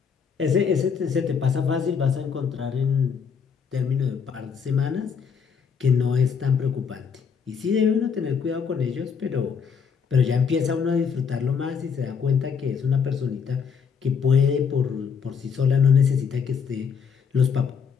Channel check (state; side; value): quieter; right; 6.4 dB